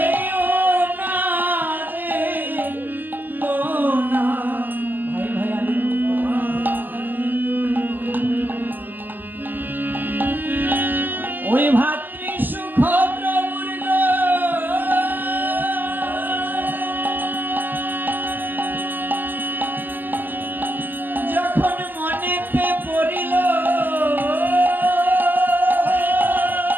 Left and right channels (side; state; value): left; late; 0.088 ms